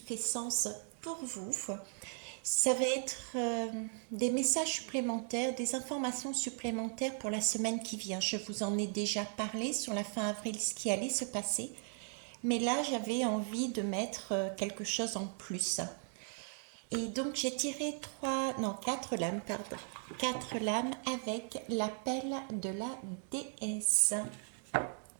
sens pour vous. Ça va être des messages supplémentaires, des informations supplémentaires pour la semaine qui vient. Je vous en ai déjà parlé sur la fin avril, ce qui allait se passer. Mais là, j'avais envie de mettre quelque chose en plus. Et donc, j'ai tiré quatre lames, pardon. Quatre lames avec l'appel de la déesse.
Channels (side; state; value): left; silent; 53 dB below the other